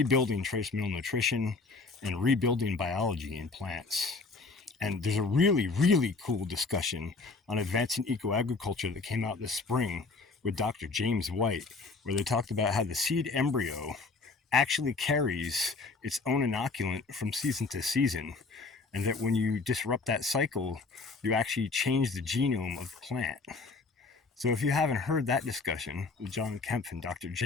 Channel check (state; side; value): quieter; right; 4.0 dB